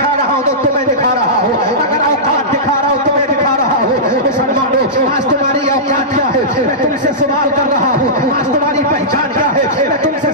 रहा हूँ तो तुम्हें दिखा रहा हूँ, अगर औकात दिखा रहा हूँ तुम्हें दिखा रहा हूँ। मुसलमानों, आज तुम्हारी औकात क्या है? मैं तुमसे सवाल कर रहा हूँ। आज तुम्हारी पहचान क्या है? मैं तुमसे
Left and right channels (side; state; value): both; normal; correlation -0.15